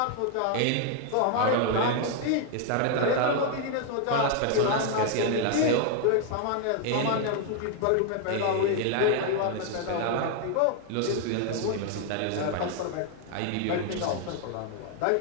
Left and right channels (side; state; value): both; different; correlation 0.00